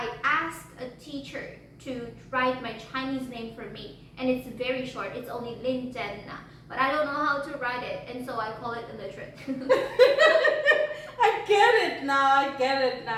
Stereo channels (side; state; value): both; identical; correlation 1.00